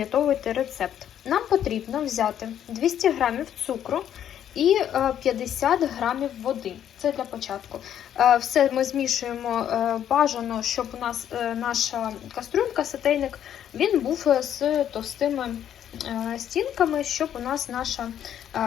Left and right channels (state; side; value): quieter; right; 10.1 dB